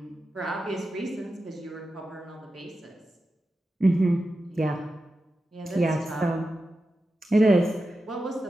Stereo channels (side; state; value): both; normal; correlation 0.91